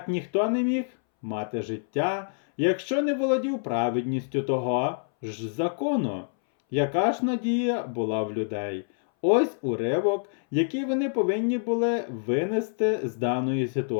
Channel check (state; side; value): silent; right; 60 dB below the other